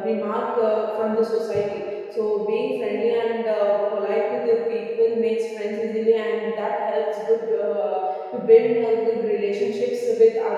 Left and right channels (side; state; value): both; identical; correlation 1.00